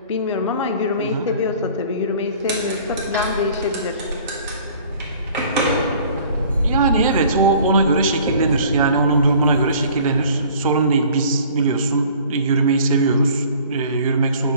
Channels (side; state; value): both; inverted; correlation -0.50